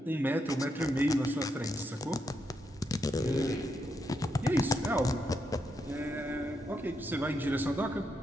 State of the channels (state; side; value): normal; both; correlation 0.81